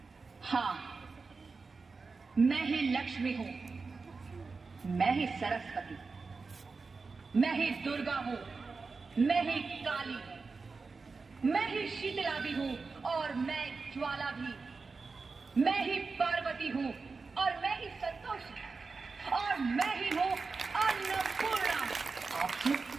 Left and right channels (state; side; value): quieter; left; 4.4 dB